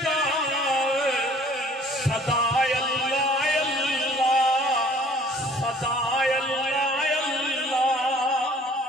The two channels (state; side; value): normal; both; correlation 0.54